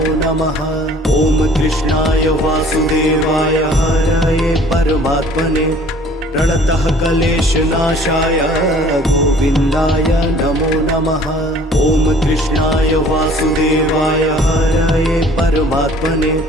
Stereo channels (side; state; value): both; normal; correlation 0.52